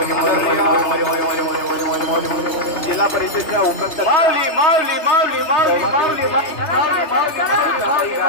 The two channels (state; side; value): late; right; 3.2 ms